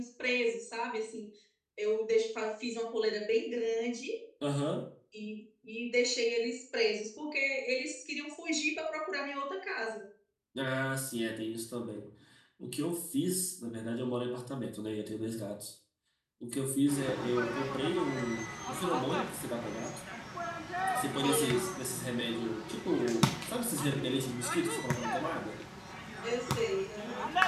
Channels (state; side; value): identical; both; correlation 1.00